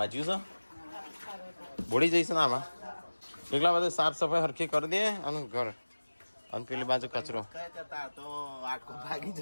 જ્યું છે બોડી જઈશ ને આમાં એટલા બધા સાફ સફાઈ હરખી કરી દે અને ઘર અને પેલી બાજુ કચરો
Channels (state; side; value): inverted; both; correlation -1.00